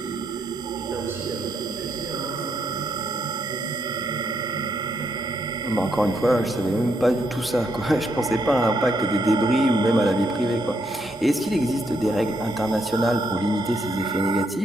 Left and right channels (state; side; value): normal; both; correlation 0.76